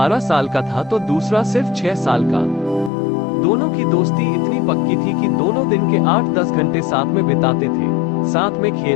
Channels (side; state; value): right; drops out; at 2.9 s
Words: साल का था तो दूसरा सिर्फ 6 साल का। दोनों की दोस्ती इतनी पक्की थी कि दोनों दिन के 8-10 घंटे साथ में बिताते थे। साथ में